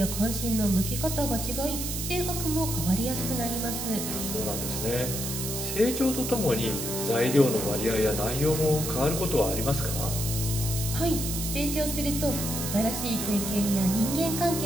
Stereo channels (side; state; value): right; noise; hiss, 4 dB below the sound